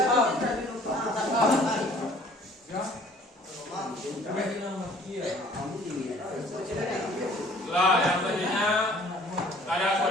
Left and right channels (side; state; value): both; normal; correlation 0.54